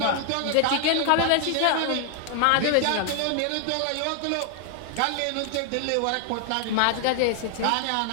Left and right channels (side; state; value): both; different; correlation 0.00